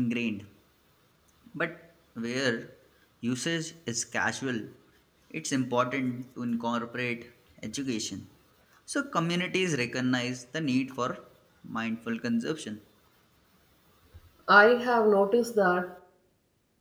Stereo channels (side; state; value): both; identical; correlation 1.00